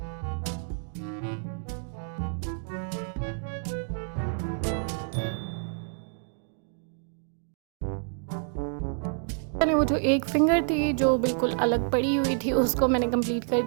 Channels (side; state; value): left; silent; digital silence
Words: वो जो एक फिंगर थी जो बिल्कुल अलग पड़ी हुई थी, उसको मैंने कंप्लीट कर